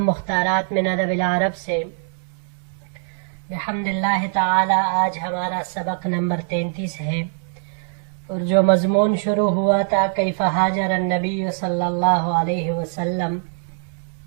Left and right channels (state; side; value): silent; left; digital silence